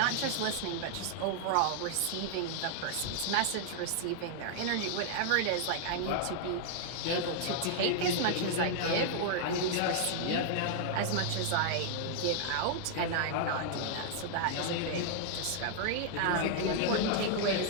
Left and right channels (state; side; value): different; both; correlation -0.01